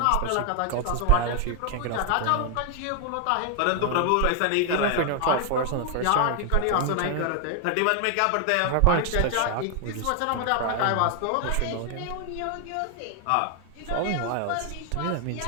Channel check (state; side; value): different; both; correlation 0.00